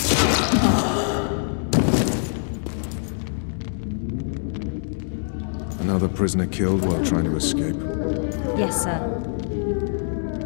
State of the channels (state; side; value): silent; right; digital silence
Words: Another prisoner killed while trying to escape. Yes, sir.